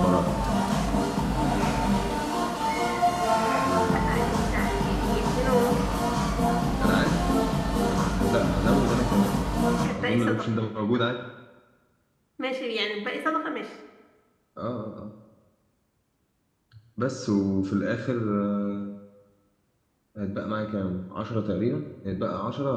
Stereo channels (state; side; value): identical; both; correlation 1.00